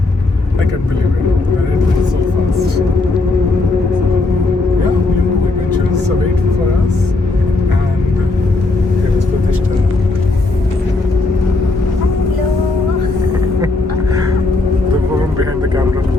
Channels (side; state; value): right; quieter; 3.2 dB